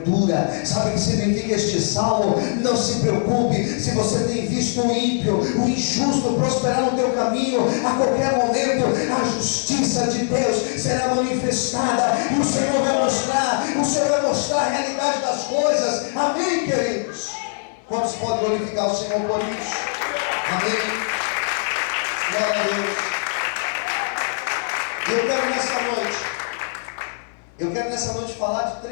Sabe o que significa este salmo? Não se preocupe se você tem visto o ímpio, o injusto prosperar no teu caminho. A qualquer momento a justiça de Deus será manifestada e o Senhor vai mostrar a realidade das coisas. Amém, queridos? Quantos podem glorificar o Senhor por isso? Amém. Glória a Deus. Eu quero nessa noite falar de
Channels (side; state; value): right; silent; 60 dB below the other